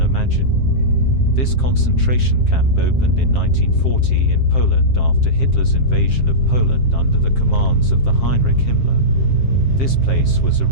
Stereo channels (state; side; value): late; right; 7.5 ms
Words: imagine. This concentration camp opened in 1940 in Poland after Hitler's invasion of Poland under the commands of the Heinrich Himmler. This place was